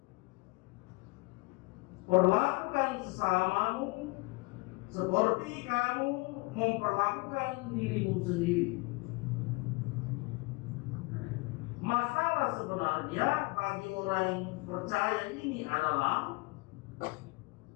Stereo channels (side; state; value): right; quieter; 26.4 dB